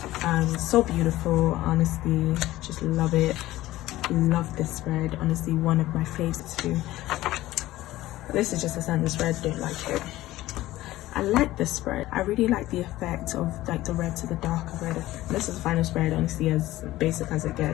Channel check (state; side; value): quieter; right; 16.3 dB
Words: So beautiful, honestly, just love it. Love this spread, honestly, one of my favorites too. This is just a standard spread, don't like it. I like this spread. I really like the effect of like the red to the darker red. This is the final spread, honestly, as basic as it